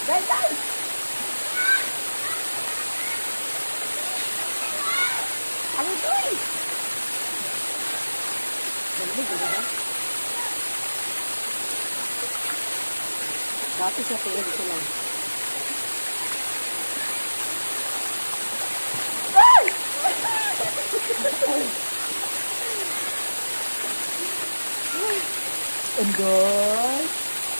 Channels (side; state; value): both; inverted; correlation -1.00